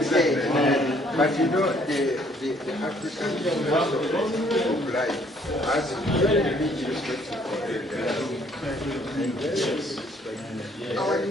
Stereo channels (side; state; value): both; normal; correlation 0.63